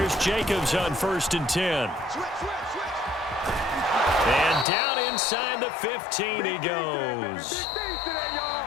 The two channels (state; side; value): drops out; right; at 4.7 s